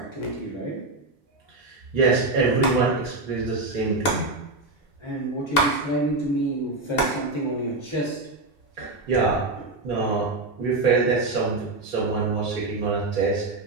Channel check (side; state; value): left; quieter; 3.1 dB